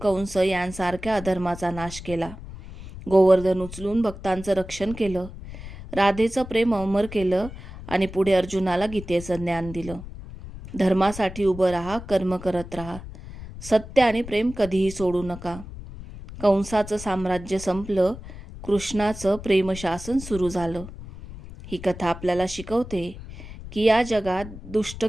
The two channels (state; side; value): noise; left; rumble, 13 dB below the sound